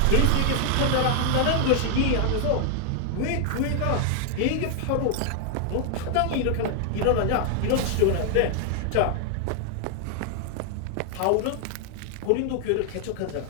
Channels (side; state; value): both; different; correlation 0.00